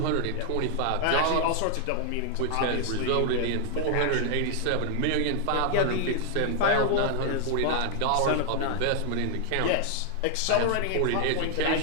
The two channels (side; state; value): both; different; correlation 0.00